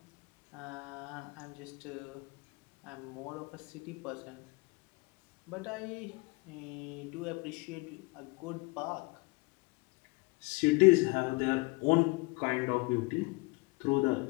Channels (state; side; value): quieter; right; 26.8 dB